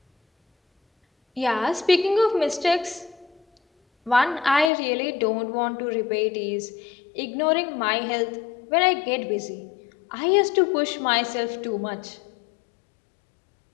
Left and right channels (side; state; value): right; drops out; at 4.7 s